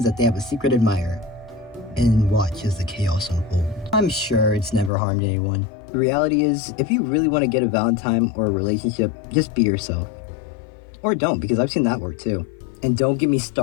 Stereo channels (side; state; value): right; drops out; at 4.9 s